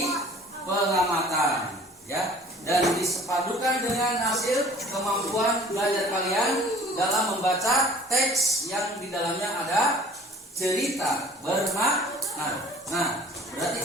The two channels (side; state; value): both; normal; correlation 0.49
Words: pengamatan, ya. Dan disepadukan dengan hasil kemampuan belajar kalian dalam membaca teks yang di dalamnya ada cerita bermakna. Nah, berarti